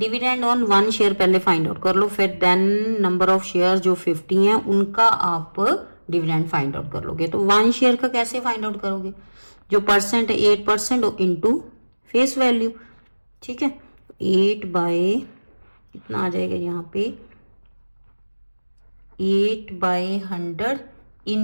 ऑन 1 शेयर पहले फाइंड आउट कर लो, फिर देन नंबर ऑफ शेयर जो 50 हैं उनका आप डिविडेंड फाइंड आउट कर लोगे। तो 1 शेयर का कैसे फाइंड आउट करोगे, जो परसेंट है 8% इंटू फेस वैल्यू, ठीक है। 8 बाय कितना आ जाएगा यहाँ पे, 8/100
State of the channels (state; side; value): inverted; both; correlation -1.00